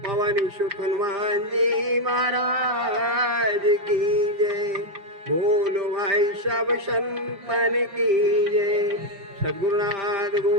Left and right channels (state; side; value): late; left; 5.6 ms